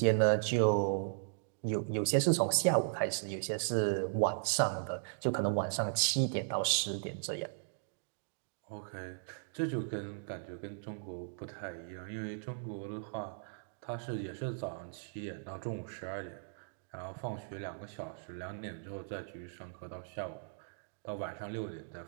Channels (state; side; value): silent; left; digital silence